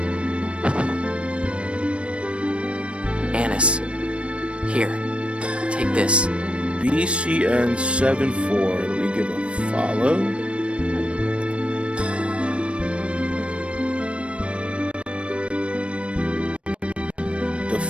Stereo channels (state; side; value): late; left; 0.060 ms